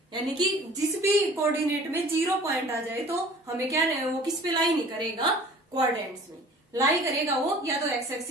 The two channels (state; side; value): normal; both; correlation 0.47